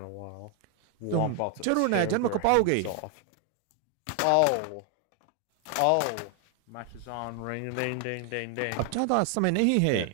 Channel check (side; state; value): both; different; correlation 0.00